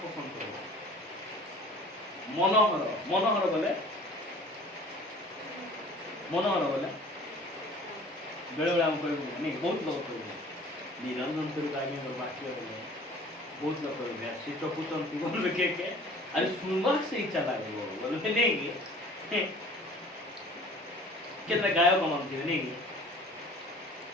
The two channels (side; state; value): both; normal; correlation 0.47